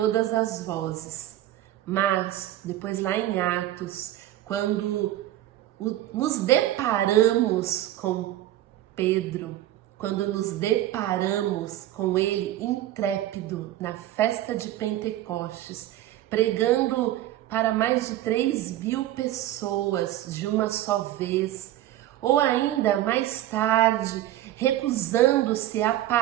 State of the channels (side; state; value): left; quieter; 13.9 dB